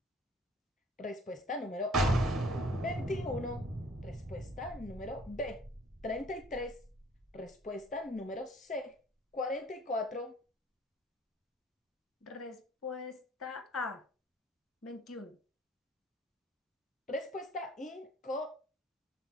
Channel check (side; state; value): both; normal; correlation 0.56